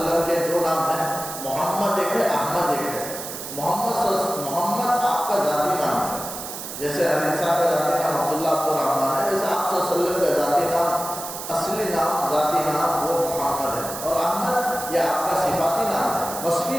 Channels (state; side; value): noise; right; hiss, 9 dB below the sound